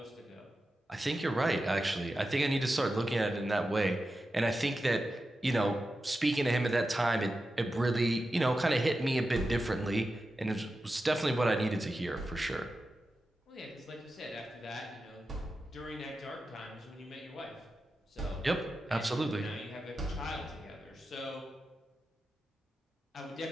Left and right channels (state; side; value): normal; both; correlation 0.91